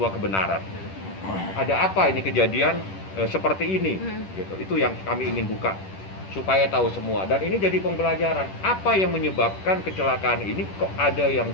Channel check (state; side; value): late; right; 10 ms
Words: kebenaran. Ada apa ini kejadian seperti ini? Gitu. Itu yang kami ingin buka supaya tahu semua, dan ini jadi pembelajaran apa yang menyebabkan kecelakaan ini, kok ada yang